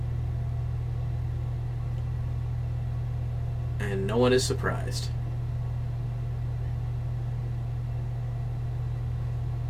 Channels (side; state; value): both; identical; correlation 1.00